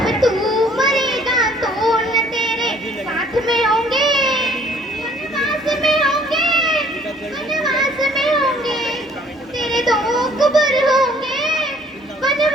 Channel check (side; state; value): both; normal; correlation 0.58